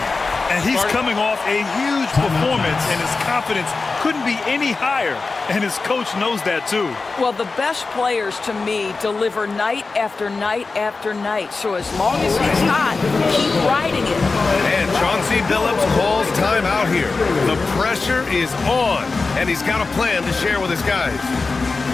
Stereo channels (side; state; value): right; quieter; 4.0 dB